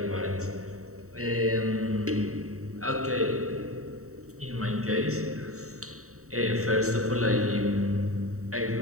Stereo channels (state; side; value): late; left; 0.64 ms